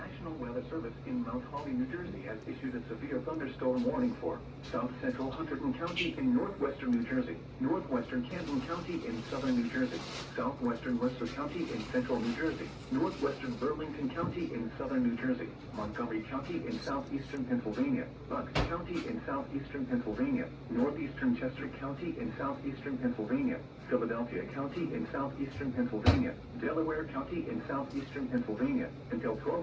National Weather Service in Mount Holly, New Jersey has issued a severe thunderstorm warning for south central Hunterdon County in northwestern New Jersey, northwestern Camden County in southern New Jersey, southwestern Worcester County in central New Jersey, northwestern Burlington County in southern New Jersey, Montgomery County in southeastern Pennsylvania, Bucks County in southeastern Pennsylvania, northeastern Chester County in southeastern Pennsylvania, Philadelphia County in southeastern Pennsylvania, Delaware County in southeastern Pennsylvania, until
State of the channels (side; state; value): both; identical; correlation 1.00